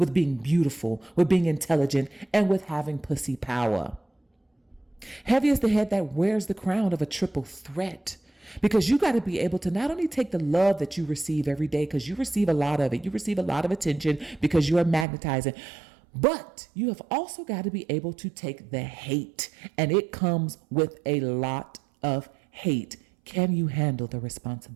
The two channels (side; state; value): left; drops out; at 15.1 s